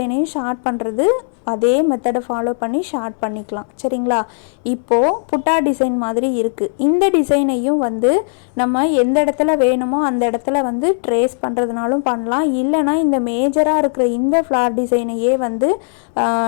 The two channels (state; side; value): silent; right; 65 dB below the other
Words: ஷார்ட் பண்ணுறது அதே மெத்தடை ஃபாலோ பண்ணி ஷார்ட் பண்ணிக்கலாம். சரிங்களா? இப்போது புட்டா டிசைன் மாதிரி இருக்குது. இந்த டிசைனையும் வந்து நம்ம எந்த இடத்துல வேணுமோ அந்த இடத்துல வந்து ட்ரேஸ் பண்ணுறதுனாலும் பண்ணலாம். இல்லைனா இந்த மேஜராக இருக்கிற இந்த ஃப்ளார் டிசைனையே வந்து